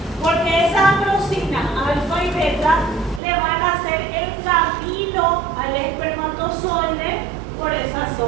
Porque esa acrosina alfa y beta le van a hacer el camino al espermatozoide por esa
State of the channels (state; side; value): drops out; left; at 3.2 s